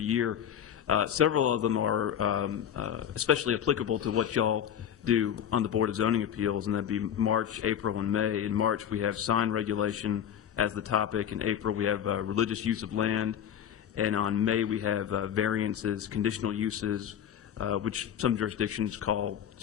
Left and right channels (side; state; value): right; quieter; 9.4 dB